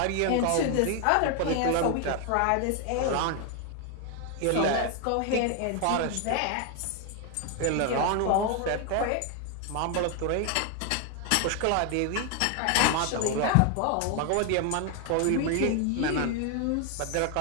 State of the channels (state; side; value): different; both; correlation 0.01